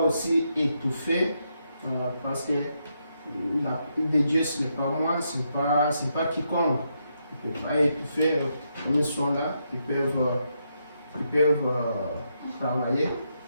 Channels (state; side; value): inverted; both; correlation -0.80